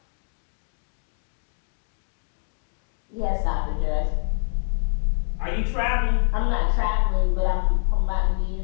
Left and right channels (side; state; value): right; silent; 60 dB below the other